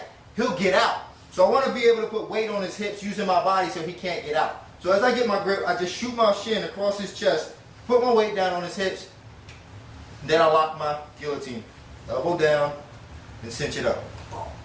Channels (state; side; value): identical; both; correlation 1.00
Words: he'll get out. So I want to be able to put weight on his hips using my body so he can't get out. So as I get my grip, I just shoot my shin across his chest, put my weight down on his hips, then I lock my guillotine. Elbow down, and cinch it up.